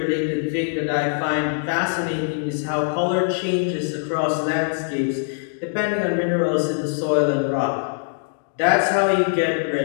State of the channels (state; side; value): silent; right; digital silence